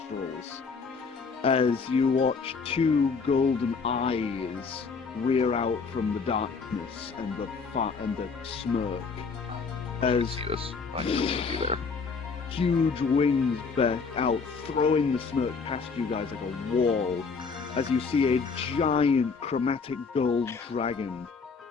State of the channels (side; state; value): right; quieter; 5.0 dB